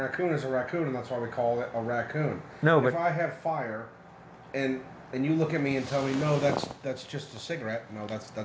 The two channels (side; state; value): both; identical; correlation 1.00